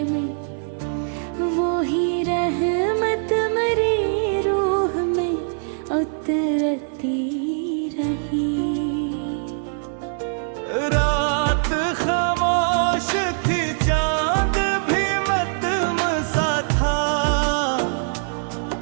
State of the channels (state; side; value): silent; left; digital silence